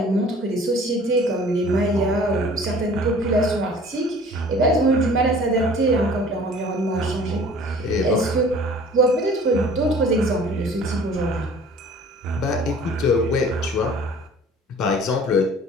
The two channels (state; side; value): normal; both; correlation 0.48